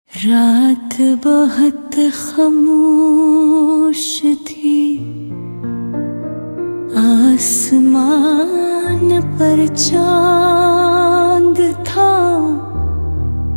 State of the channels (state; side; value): inverted; both; correlation -1.00